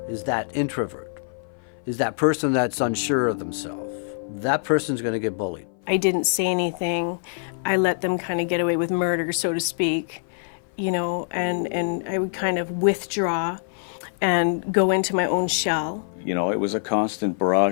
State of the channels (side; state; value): right; silent; 57 dB below the other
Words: is that introvert, is that person that's unsure of themselves. That person's going to get bullied. I didn't say anything. I let them kind of get away with murder, so to speak, you know, and I would kind of withdraw and go into my own shell. You know, it was a constant